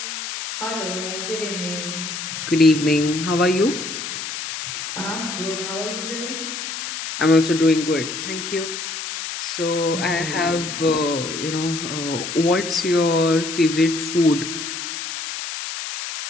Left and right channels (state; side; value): noise; left; hiss, 6 dB below the sound